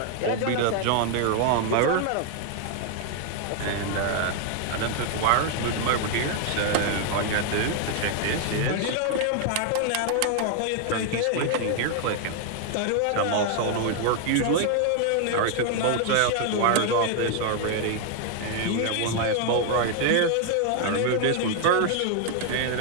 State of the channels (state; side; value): different; both; correlation 0.00